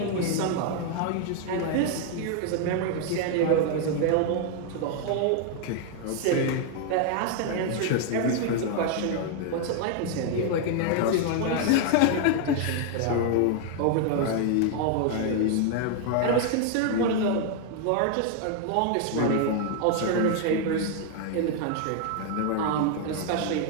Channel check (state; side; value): different; both; correlation 0.00